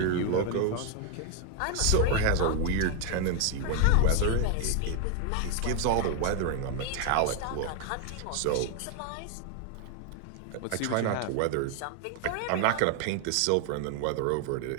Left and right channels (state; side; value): different; both; correlation 0.01